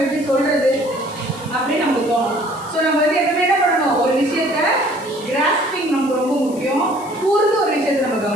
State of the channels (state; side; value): noise; left; hiss, 20 dB below the sound